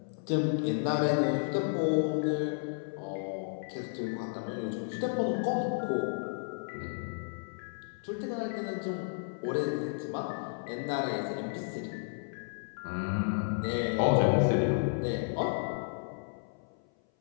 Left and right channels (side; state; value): right; silent; 56 dB below the other